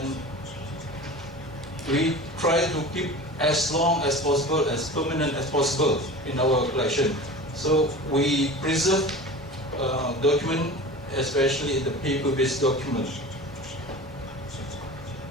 we try to keep as long as possible, as permanent as possible in our collection. So we preserve document, especially the paper-based document.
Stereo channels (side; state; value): both; normal; correlation 0.35